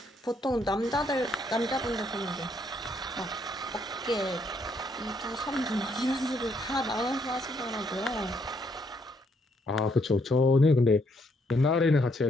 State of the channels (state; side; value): normal; both; correlation 0.72